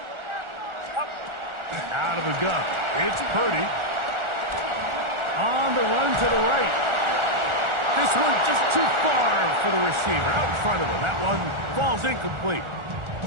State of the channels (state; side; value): late; left; 1.4 ms